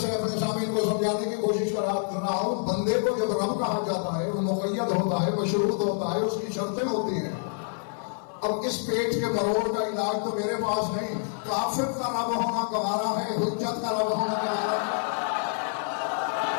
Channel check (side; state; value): right; silent; 57 dB below the other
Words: अपने सामने को समझाने की कोशिश कर रहा हूं। बंदे को जब रब कहा जाता है वो मुक़य्यद होता है, मशरूत होता है, उसकी शर्तें होती हैं। अब इस पेट के मरोड़ का इलाज तो मेरे पास नहीं, काफिर का रब होना गवारा है, हुज्जत का रब होना गवारा है।